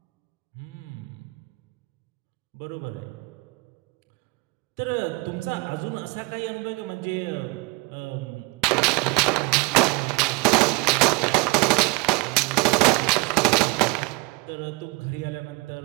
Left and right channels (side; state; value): left; quieter; 26.5 dB